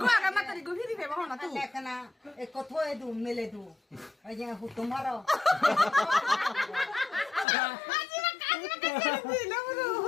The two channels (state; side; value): drops out; right; at 7.5 s